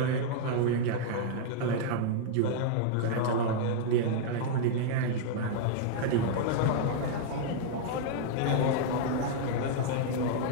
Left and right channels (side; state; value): both; different; correlation -0.01